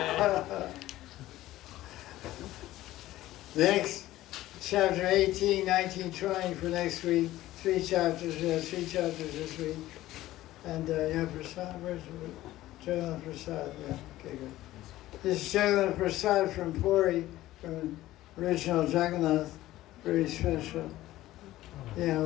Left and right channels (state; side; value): quieter; right; 15.6 dB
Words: Next, chapter 18, 19, 20 for next week. 3 chapters, we have 3 chapters this week. And yeah, Prasad, where's it? Jagannath Prasad, yeah, okay, good. This is Jagannath Prasad from Puri, from original Jagannath, very special. Yeah,